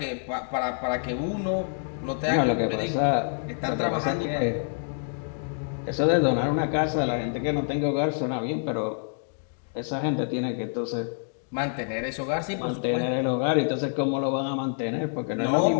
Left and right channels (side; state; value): right; silent; digital silence